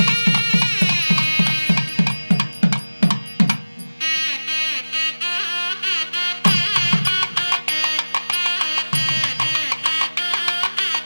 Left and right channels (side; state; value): both; inverted; correlation -1.00